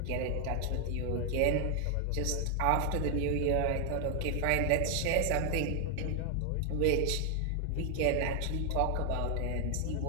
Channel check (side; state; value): both; different; correlation 0.00